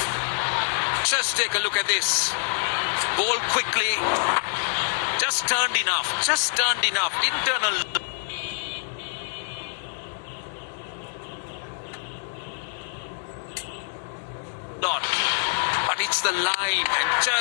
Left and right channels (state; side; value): silent; right; digital silence